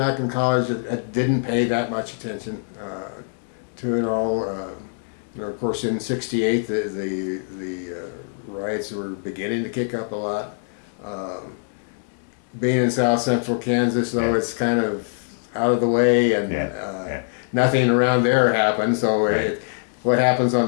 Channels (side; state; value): right; silent; digital silence